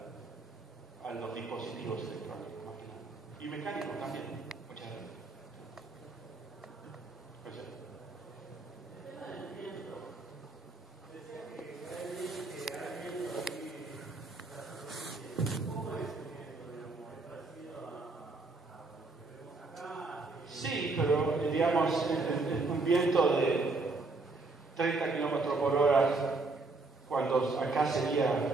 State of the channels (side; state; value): left; quieter; 3.5 dB